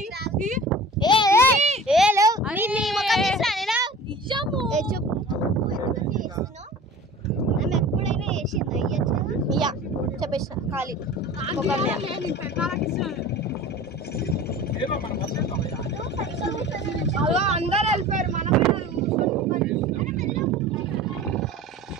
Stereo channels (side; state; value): both; normal; correlation 0.40